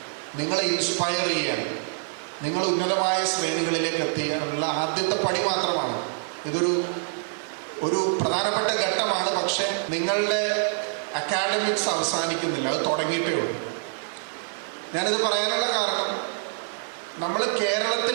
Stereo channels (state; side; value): silent; left; digital silence